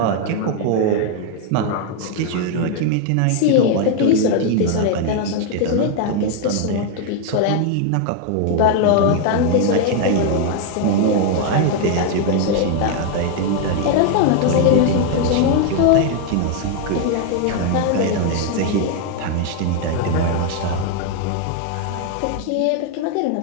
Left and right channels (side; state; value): both; different; correlation 0.00